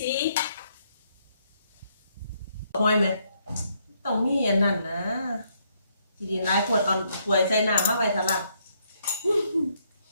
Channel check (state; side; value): inverted; both; correlation -0.73